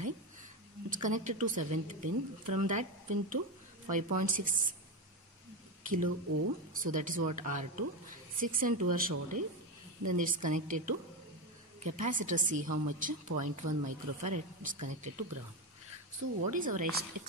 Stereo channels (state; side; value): normal; both; correlation 0.13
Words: It's connected to 7th pin. From that pin to 5.6 kilo ohm. So that is what? R2. 6 and 2 are shorted. Then it's connected to capacitor C, how much? 0.1 microfarad is connected to ground. So what is our